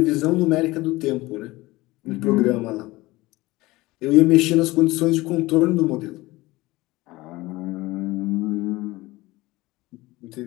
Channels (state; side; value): quieter; right; 20.1 dB